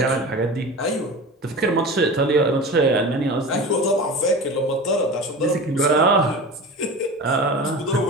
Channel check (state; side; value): normal; both; correlation 0.32